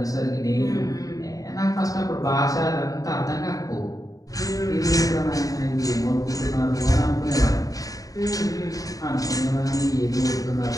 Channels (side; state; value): right; late; 0.17 ms